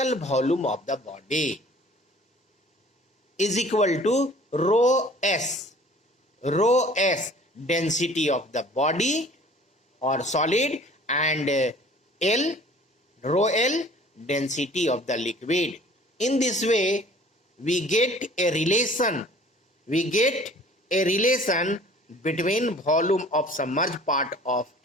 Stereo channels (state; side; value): normal; both; correlation 0.50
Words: volume of the body is equal to rho S density of the body or solid, and rho L density of the liquid. In this way we get a relation between volume of submerged part of